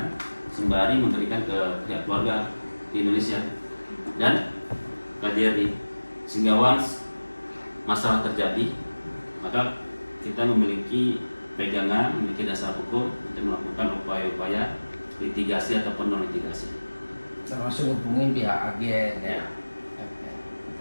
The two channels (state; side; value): inverted; both; correlation -1.00